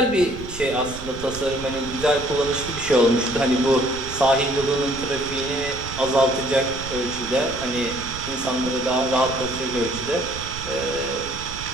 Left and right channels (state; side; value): noise; right; rumble, 12 dB below the sound